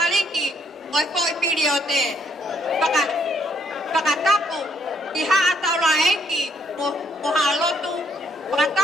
oi foi piriote. Pakatapu, iha ataula enki, mohalotu.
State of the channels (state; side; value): normal; both; correlation 0.70